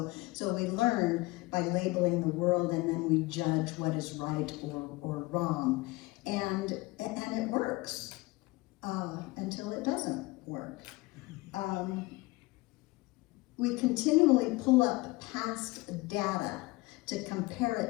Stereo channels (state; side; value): quieter; right; 21.9 dB